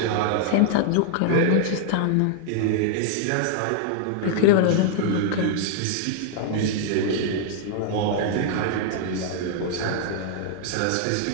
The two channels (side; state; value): both; different; correlation -0.01